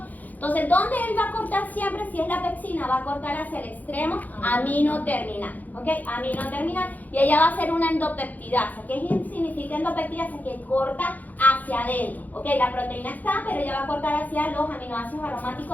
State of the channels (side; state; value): right; late; 0.081 ms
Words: Entonces, ¿dónde él va a cortar siempre? Si es la pexina, va a cortar hacia el extremo amino-terminal, ¿ok? Amino-terminal, y ella va a hacer una endopeptidasa. ¿Qué significa endopeptidasa? Que corta hacia adentro, ¿ok? La proteína está, pero ella va a cortar hacia los aminoácidos